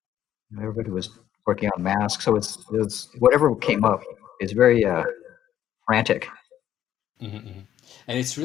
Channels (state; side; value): quieter; right; 11.1 dB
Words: Everybody was working on Mask, so it's whatever came up is very frantic. And it's